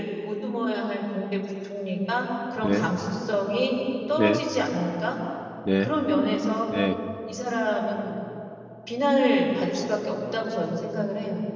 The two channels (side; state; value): both; identical; correlation 1.00